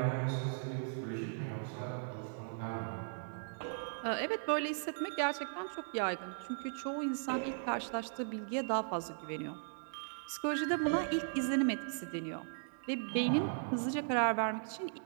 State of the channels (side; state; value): left; silent; digital silence